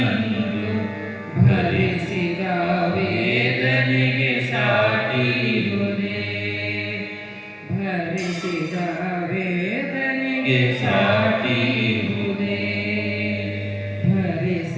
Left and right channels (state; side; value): identical; both; correlation 1.00